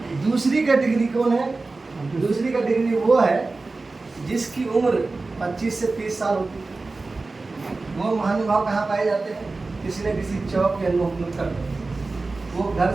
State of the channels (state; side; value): quieter; left; 3.6 dB